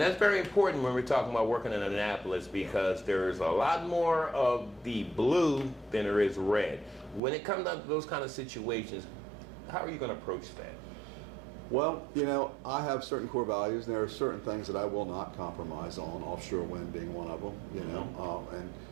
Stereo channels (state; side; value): drops out; left; at 7.2 s